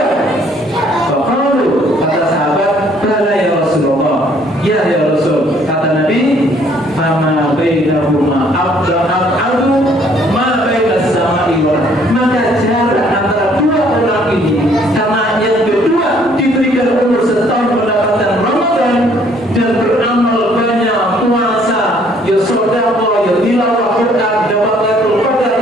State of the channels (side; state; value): both; normal; correlation 0.62